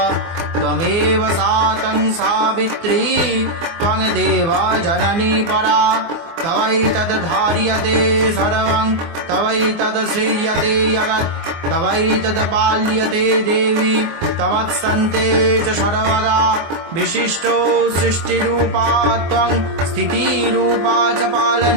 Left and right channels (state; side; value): late; left; 24 ms